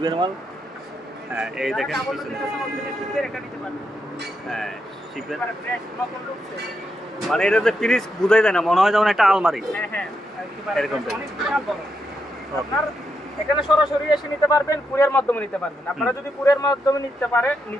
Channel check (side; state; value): both; normal; correlation 0.82